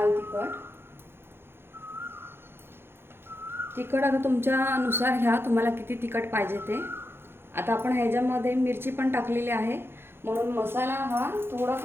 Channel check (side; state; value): left; late; 0.11 ms